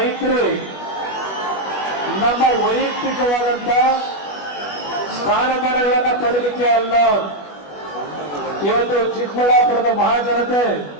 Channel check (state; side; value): late; right; 21 ms